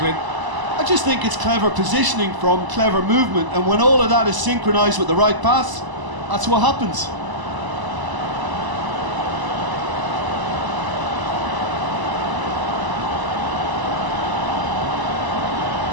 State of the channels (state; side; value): late; left; 1.0 ms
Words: I just think it's clever positioning from clever movement, and when all of that is synchronised with the right pass, that's what happens.